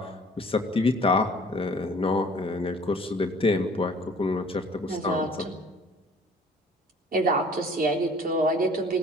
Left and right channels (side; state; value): both; normal; correlation 0.51